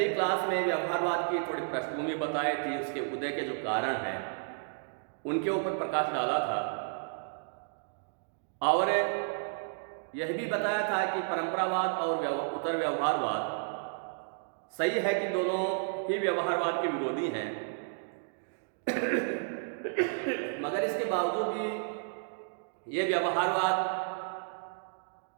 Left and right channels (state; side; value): silent; left; digital silence